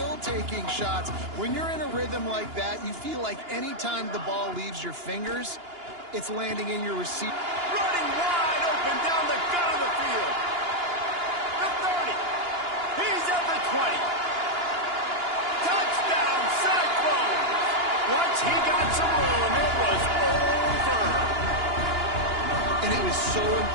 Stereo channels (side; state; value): left; late; 2.9 ms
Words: taking shots. When you're in a rhythm like that, you feel like any time the ball leaves your fingers, it's landing in your receiver. Running wide open down the gut of the field. The 30. He's at the 20. Touchdown, Cyclones. Once he got some room, it was over. And it was so